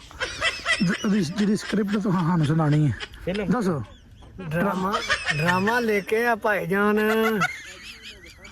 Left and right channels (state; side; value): identical; both; correlation 1.00